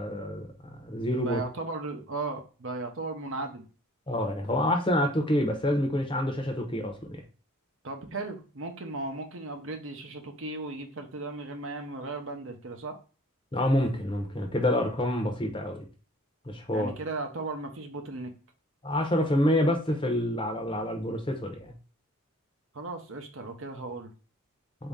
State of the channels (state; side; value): normal; both; correlation 0.52